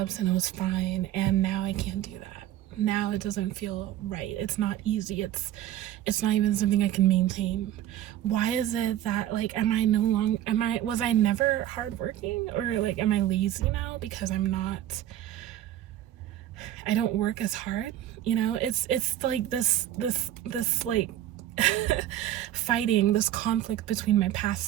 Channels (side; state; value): left; quieter; 12.5 dB